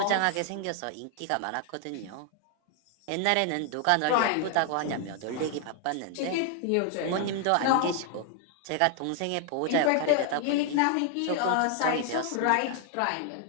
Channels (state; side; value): different; both; correlation 0.00